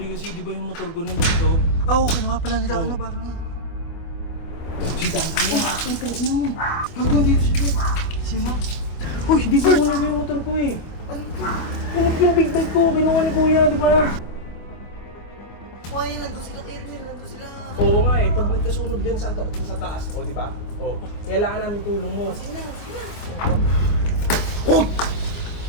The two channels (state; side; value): late; right; 25 ms